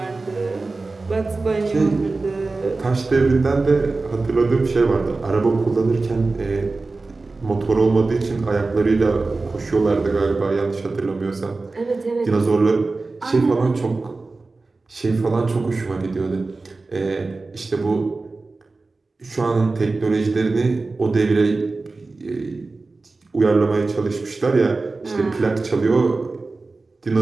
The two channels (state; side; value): quieter; left; 3.6 dB